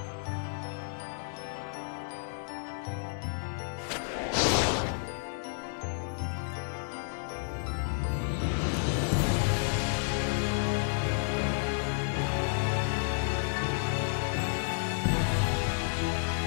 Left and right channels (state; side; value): silent; right; 57 dB below the other